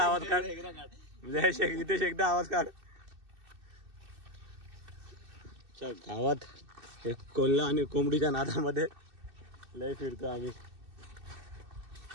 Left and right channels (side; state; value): left; late; 2.6 ms